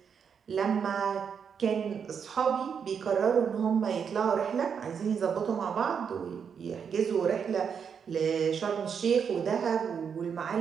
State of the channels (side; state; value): left; quieter; 6.9 dB